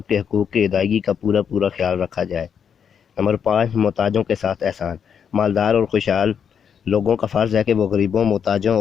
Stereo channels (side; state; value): right; quieter; 7.6 dB